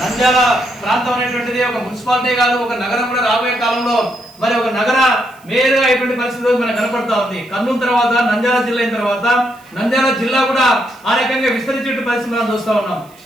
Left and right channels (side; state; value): right; noise; hiss, 28 dB below the sound